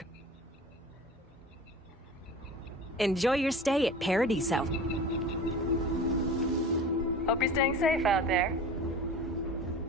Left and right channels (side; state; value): both; normal; correlation 0.36